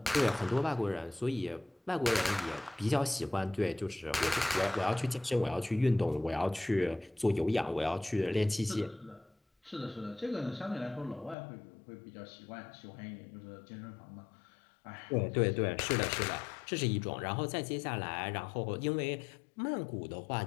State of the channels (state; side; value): drops out; right; at 11.4 s